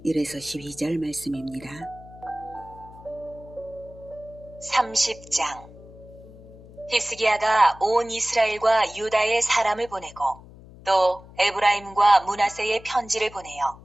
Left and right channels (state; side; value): noise; left; hum, 20 dB below the sound